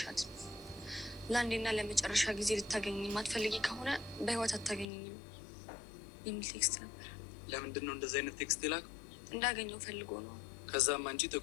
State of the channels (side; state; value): right; drops out; at 4.9 s